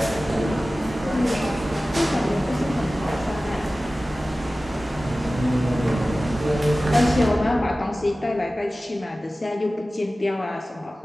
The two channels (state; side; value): normal; both; correlation 0.96